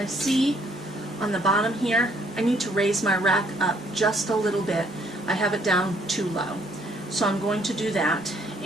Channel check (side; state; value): both; normal; correlation 0.66